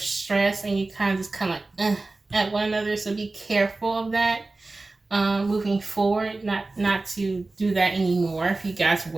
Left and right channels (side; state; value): left; quieter; 3.3 dB